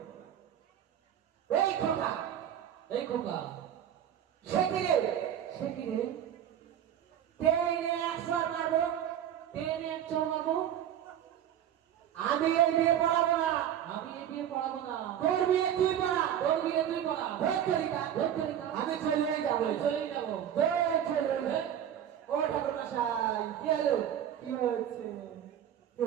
এই খোকা সে কিরে টেনে 100 মারবো টেনে 100 মারবো আমি এই বিয়ে পড়াবো না তোর বিয়ে তুই পড়া আমি চলে যাবো ও ঠাকুর মশাই কি হলো কি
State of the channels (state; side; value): quieter; left; 10.1 dB